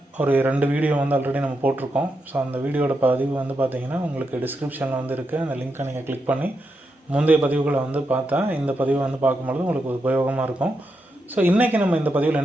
ஒரு 2 வீடியோ வந்து ஆல்ரெடி நம்ம போட்டிருக்கோம். ஸோ அந்த வீடியோட பதிவு வந்து பார்த்திங்கன்னா உங்களுக்கு டிஸ்கிரிப்ஷனில் வந்து இருக்குது. அந்த லிங்க்கை நீங்கள் கிளிக் பண்ணி முந்தைய பதிவுகளை வந்து பார்த்தா இந்த பதிவை வந்து பார்க்கும்பொழுது உங்களுக்கு உபயோகமாக இருக்கும். ஸோ இன்றைக்கி நம்ம இந்த பதிவில்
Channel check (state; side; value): normal; both; correlation 0.85